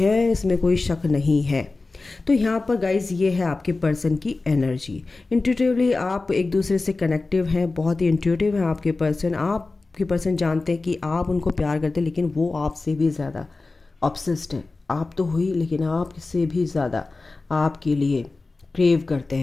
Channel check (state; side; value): quieter; right; 3.5 dB